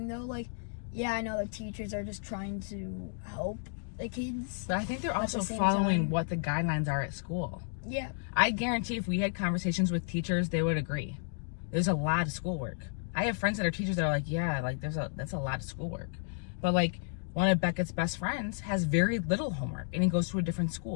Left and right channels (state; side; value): silent; right; digital silence